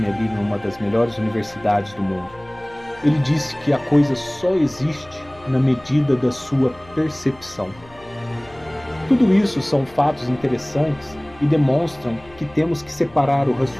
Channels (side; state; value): left; noise; hum, 24 dB below the sound